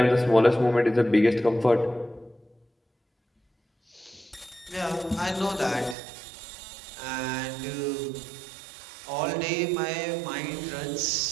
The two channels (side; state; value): left; drops out; at 6.0 s